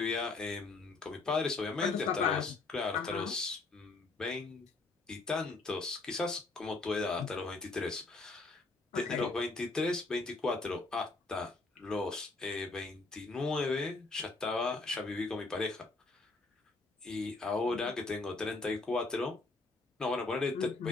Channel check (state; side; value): quieter; right; 3.6 dB